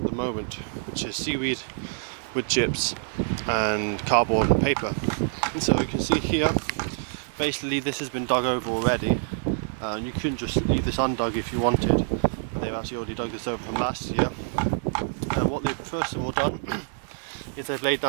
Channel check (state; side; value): silent; left; digital silence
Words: the moment, which is seaweed, wood chips and cardboard and paper. And so you can see here, basically this has been dug over already. And you couldn't just leave this undug if you wanted, but they've actually already dug this over from last year. And what they've first of all done is they've laid